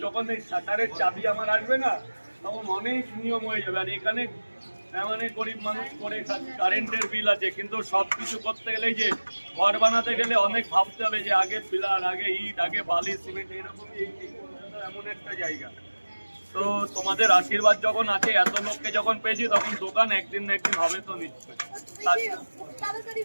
যখন এই শাটারের চাবি আমার আসবে না, তখন অনেক নিয়ম হয়ে যাবে। আর এখানে মানে গরিব মানুষ করে কারেন্টের বিল আছে, কিন্তু সবকিছু করতে গেলে যে ঘর বানাতে গেলে অনেক ভাবতে হবে যে আগে পিলার, আগে ইট, আগে বালি, সিমেন্ট, এরকম এমন একটা জায়গা। তো তোমাদের আশীর্বাদ যখন আছে, এত লোককে যখন পেয়েছি, তখন দোকান একদিন না একদিন হবে তো নিশ্চয়।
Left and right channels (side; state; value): both; inverted; correlation -1.00